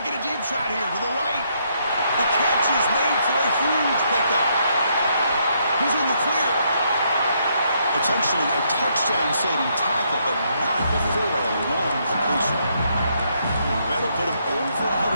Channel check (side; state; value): both; inverted; correlation -0.74